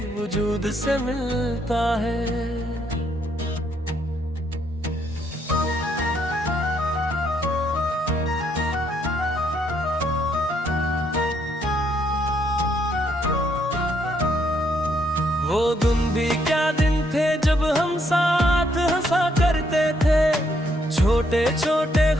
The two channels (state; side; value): normal; both; correlation 0.72